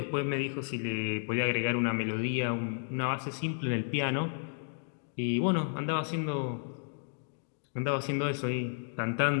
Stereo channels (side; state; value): right; silent; digital silence